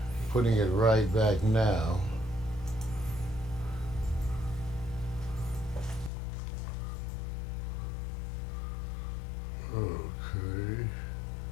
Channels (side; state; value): right; drops out; at 6.1 s